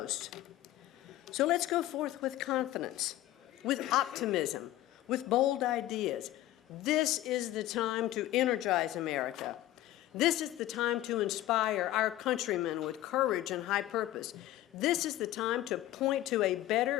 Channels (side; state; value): right; quieter; 14.6 dB